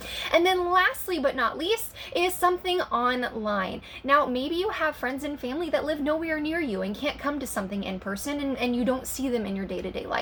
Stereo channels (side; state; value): both; identical; correlation 1.00